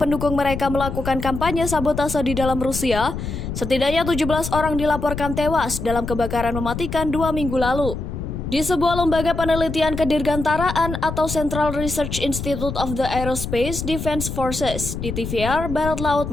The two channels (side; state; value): left; noise; rumble, 6 dB below the sound